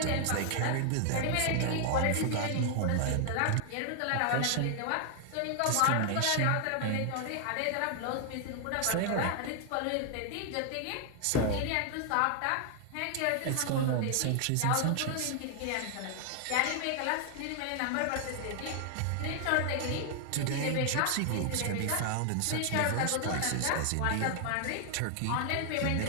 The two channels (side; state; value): both; different; correlation 0.00